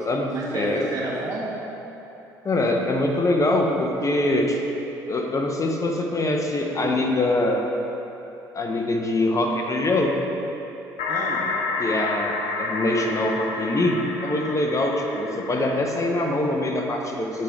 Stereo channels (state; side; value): normal; both; correlation 0.61